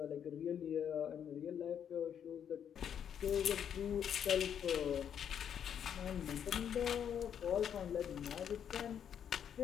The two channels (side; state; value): right; quieter; 8.7 dB